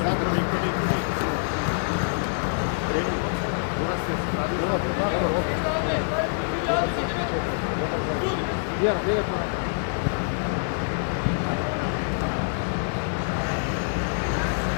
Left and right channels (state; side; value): silent; right; digital silence